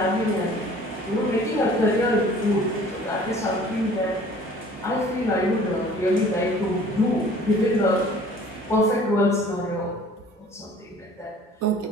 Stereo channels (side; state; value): both; normal; correlation 0.50